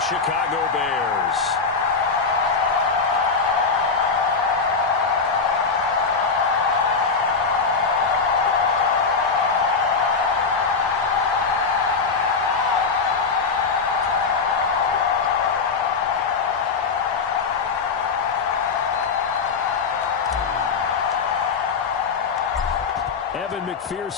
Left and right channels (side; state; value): right; quieter; 5.0 dB